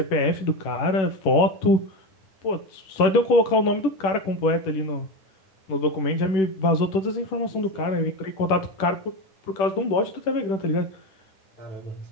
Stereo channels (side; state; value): right; late; 10 ms